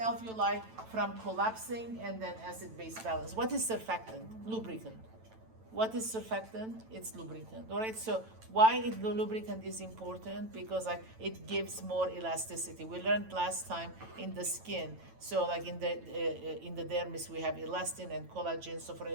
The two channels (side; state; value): left; late; 9.0 ms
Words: from collapsing, and then acid-base balance. What is surfactant? Lubricant. What is surfactant? It's lubricant. All right, so why the lubricant is important? Because like it gives more elasticity. We learned last time in the skin. So like in the dermis we have elastin and collagen. So for